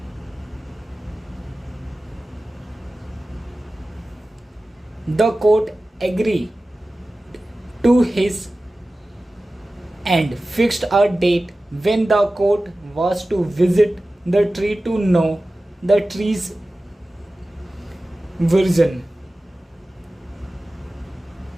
The court agree to his and fixed a date when the court was to visit the tree to know the tree's version.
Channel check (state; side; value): normal; both; correlation 0.96